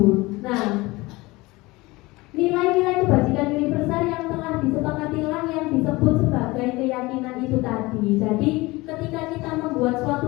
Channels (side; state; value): right; quieter; 21.8 dB